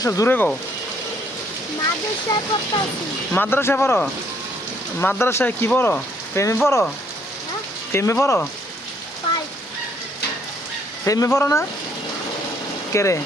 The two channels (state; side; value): normal; both; correlation 0.66